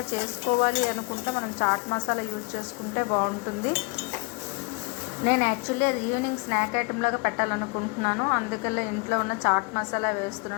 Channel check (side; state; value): right; quieter; 29.2 dB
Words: చేసుకోవాలి అనుకుంటే మనం చాట్ మసాలా యూజ్ చేసుకుంటే బాగుంటుంది. నేను యాక్చువల్లీ అది ఈవినింగ్ స్నాక్ ఐటెం లాగా పెట్టాలనుకుంటున్నాను. అందుకని ఇంట్లో ఉన్న చాట్ మసాలా